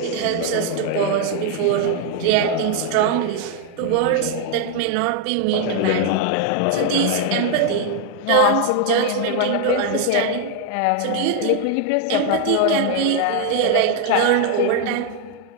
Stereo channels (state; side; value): different; both; correlation 0.00